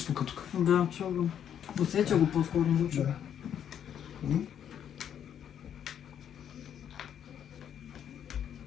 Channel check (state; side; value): quieter; right; 9.2 dB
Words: тук? Да, чу го. Усеча го по-скоро, не го чу. Да.